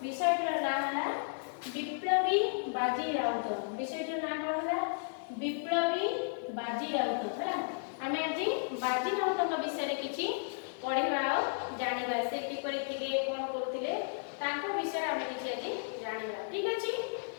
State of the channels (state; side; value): silent; right; 55 dB below the other